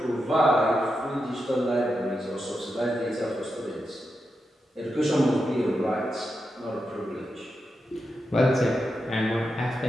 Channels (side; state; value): both; normal; correlation 0.87